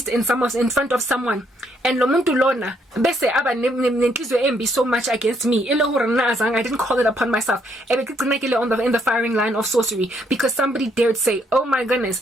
in front of someone, and lomuntu lona bese aba nenhliziyo embi so much against me. I didn't call it upon myself. In the firing line of sorcery because somebody dared say, "Oh my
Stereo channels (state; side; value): normal; both; correlation 0.71